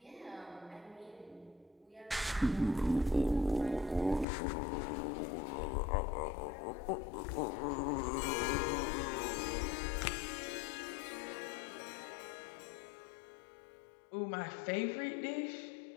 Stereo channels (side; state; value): right; drops out; at 4.2 s